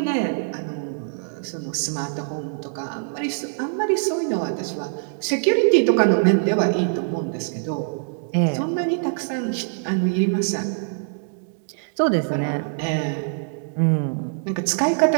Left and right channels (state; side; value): silent; left; digital silence